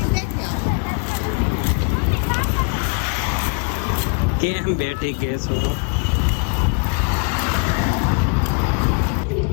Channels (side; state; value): right; quieter; 34.3 dB